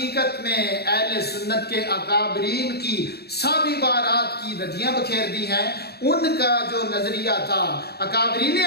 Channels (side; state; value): right; late; 0.47 ms